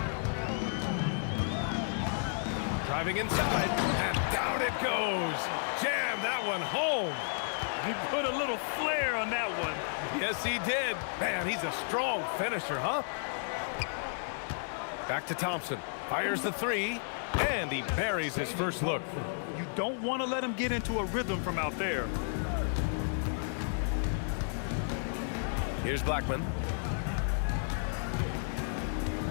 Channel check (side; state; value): right; silent; 56 dB below the other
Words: Driving inside, and down it goes. Jam that one home. He put a little flair on that one. Yes, he did. Man, he's a strong finisher, huh? Back to Thompson. Fires the three, and he buries his first look. You don't want to let him get into a rhythm from out there. Here's Blackman.